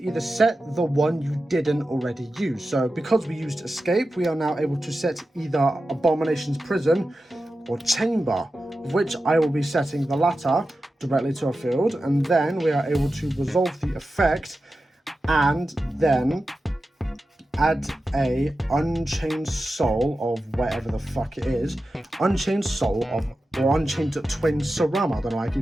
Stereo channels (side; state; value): both; normal; correlation 0.92